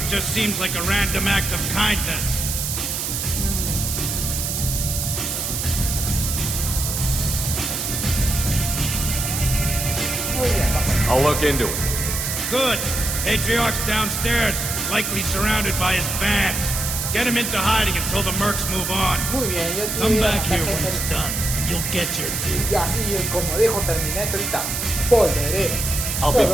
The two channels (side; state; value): right; noise; hiss, 2 dB below the sound